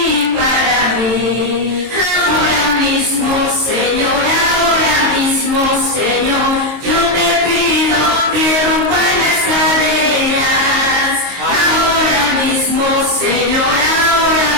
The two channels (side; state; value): left; late; 22 ms